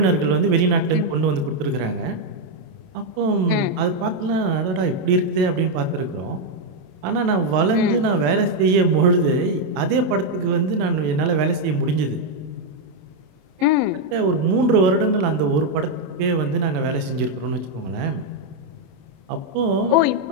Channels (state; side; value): late; left; 27 ms